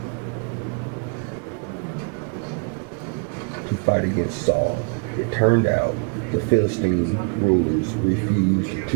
To fight against Saul. It turned out the Philistine rulers refused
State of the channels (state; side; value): quieter; left; 35.2 dB